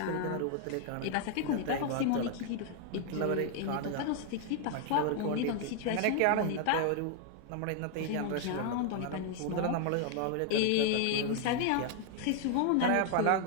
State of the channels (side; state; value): both; different; correlation 0.00